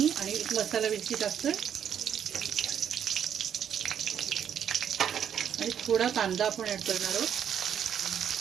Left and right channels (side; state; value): left; quieter; 8.9 dB